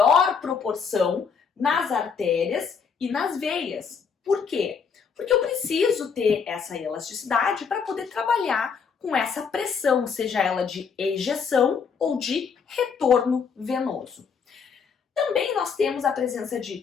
proporção nas artérias e nas veias. Por quê? Porque eu preciso ter essa elasticidade para poder trabalhar com essa pressão, seja ela de ejeção ou de retorno venoso. Também nós temos a presença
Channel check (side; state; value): right; quieter; 6.1 dB